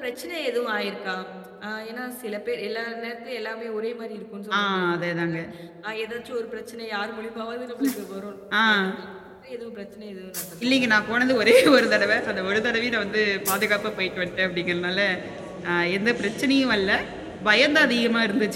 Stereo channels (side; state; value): both; identical; correlation 1.00